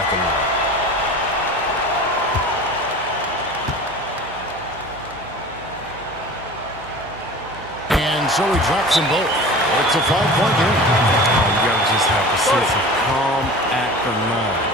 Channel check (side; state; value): right; noise; hum, 22 dB below the sound